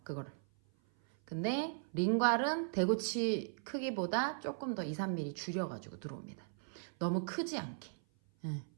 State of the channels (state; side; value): silent; left; 53 dB below the other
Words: 그거를. 근데 링괄은 대구치 크기보다 조금 더 2, 3mm 줄여가지고 들어옵니다. 너무 크지 않게.